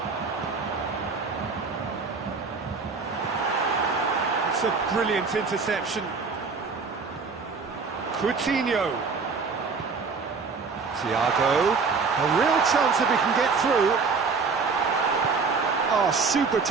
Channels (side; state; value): left; quieter; 4.8 dB